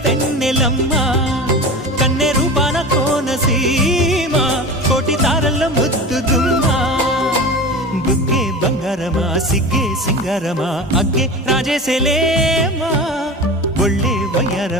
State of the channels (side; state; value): both; normal; correlation 0.31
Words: వెన్నెలమ్మ కన్నె రూపాన కోనసీమ కోటి తారల్లో ముద్దుగుమ్మ బుగ్గే బంగారమా సిగ్గే సింగారమా అగ్గే రాజేసేలేమా ఒళ్ళే